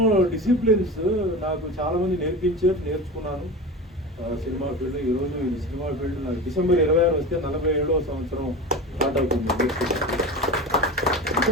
డిసిప్లిన్స్ నాకు చాలామంది నేర్చుకున్నాను. సినిమా ఫీల్డ్ ఈరోజు ఈ సినిమా ఫీల్డ్ నాకు డిసెంబర్ 26 వస్తే 47వ సంవత్సరం స్టార్ట్ అవుతుంది.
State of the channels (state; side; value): normal; both; correlation 0.28